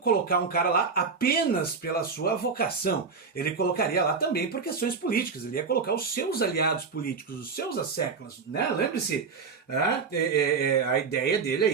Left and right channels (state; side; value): quieter; left; 5.1 dB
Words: um cara lá apenas pela sua vocação. Ele colocaria lá também por questões políticas. Ele ia colocar os seus aliados políticos, os seus asseclas. Lembre-se, a ideia dele